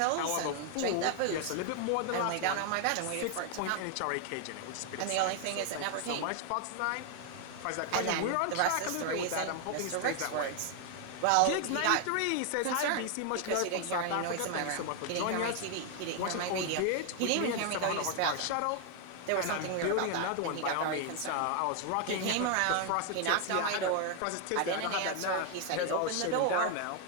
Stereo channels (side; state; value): both; different; correlation 0.00